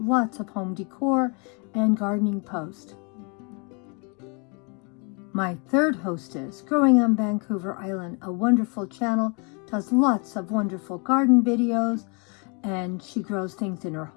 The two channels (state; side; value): quieter; right; 34.1 dB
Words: of home decor and gardening posts. My third hostess, Growing on Vancouver Island, a wonderful channel, does lots of wonderful garden videos, and she grows things in her